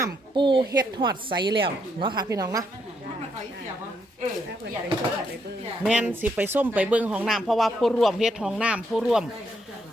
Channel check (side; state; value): both; normal; correlation 0.75